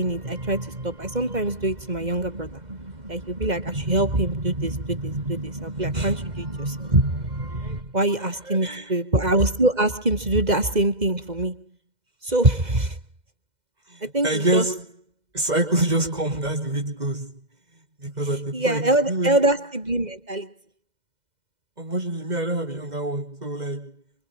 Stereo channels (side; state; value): left; late; 2.0 ms